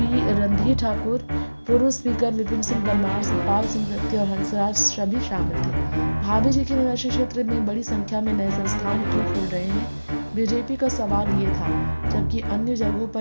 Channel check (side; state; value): both; inverted; correlation -1.00